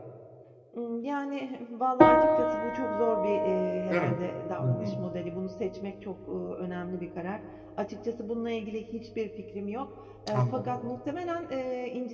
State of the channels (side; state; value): both; identical; correlation 1.00